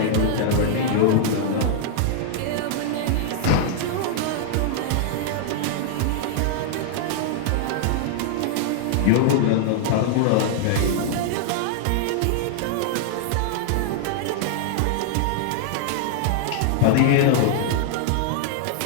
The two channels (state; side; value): different; both; correlation -0.01